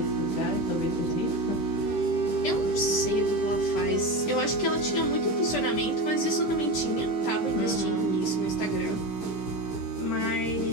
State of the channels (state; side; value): late; right; 15 ms